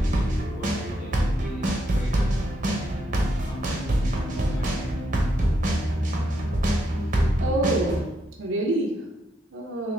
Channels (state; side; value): normal; both; correlation 0.78